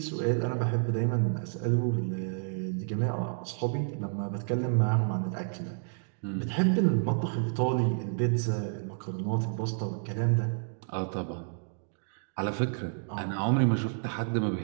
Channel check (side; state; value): left; silent; digital silence